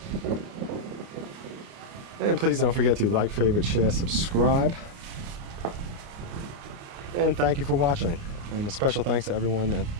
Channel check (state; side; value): late; left; 29 ms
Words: And please don't forget to like, favorite, share, subscribe. And thank you for watching. And a special thanks to everyone that